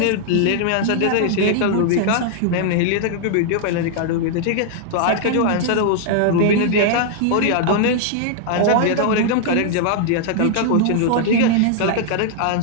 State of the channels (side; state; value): both; different; correlation -0.01